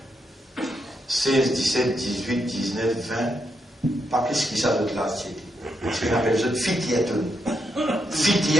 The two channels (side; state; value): both; normal; correlation 0.81